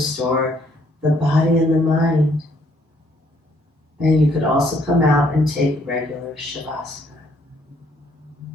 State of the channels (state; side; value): normal; both; correlation 0.67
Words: the body and the mind. And you could also come out and take regular Shavasana.